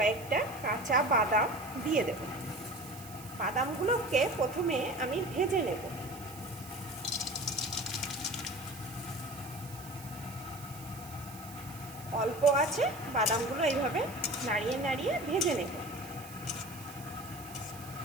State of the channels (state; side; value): noise; right; hiss, 16 dB below the sound